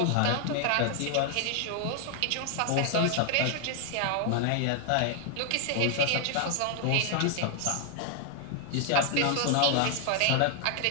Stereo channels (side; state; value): both; different; correlation 0.00